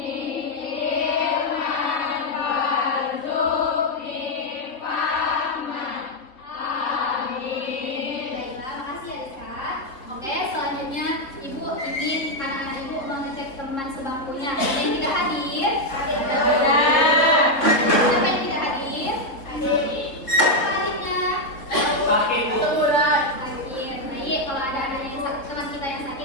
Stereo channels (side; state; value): right; late; 3.5 ms